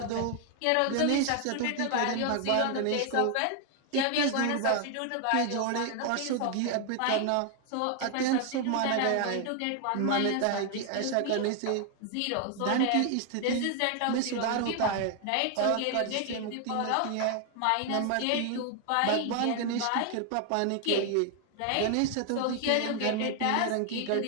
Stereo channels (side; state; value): both; different; correlation 0.00